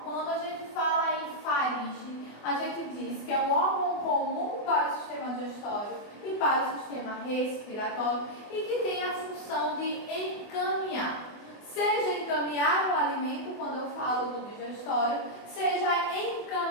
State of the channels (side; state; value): right; late; 24 ms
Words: quando a gente fala em faringe, a gente diz que é um órgão comum para o sistema digestório e para o sistema respiratório e que tem a função de encaminhar. Seja encaminhar o alimento, quando eu falo do digestório, seja